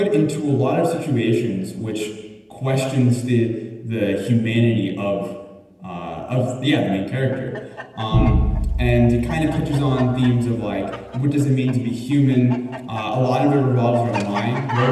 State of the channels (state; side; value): identical; both; correlation 1.00